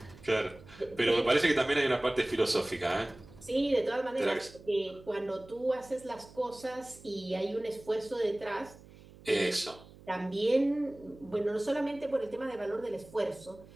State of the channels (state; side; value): noise; right; hum, 21 dB below the sound